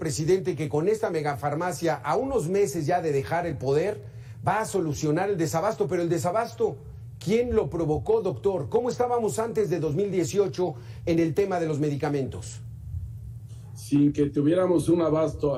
que con esta megafarmacia, a unos meses ya de dejar el poder, va a solucionar el desabasto. Pero el desabasto, ¿quién lo provocó, doctor? ¿Cómo estábamos antes de 2018 en el tema de los medicamentos? Sin que tuviéramos un abasto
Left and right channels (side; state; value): both; identical; correlation 1.00